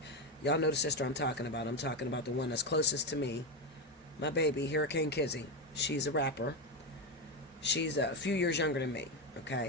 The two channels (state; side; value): normal; both; correlation 0.11